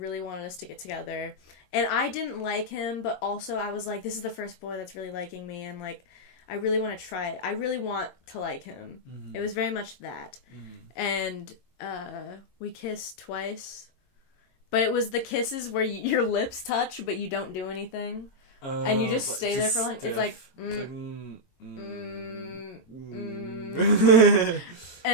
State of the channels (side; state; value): right; late; 22 ms